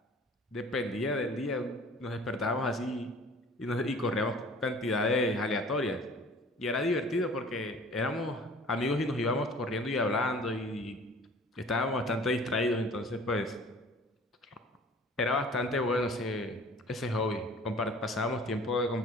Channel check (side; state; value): both; normal; correlation 0.48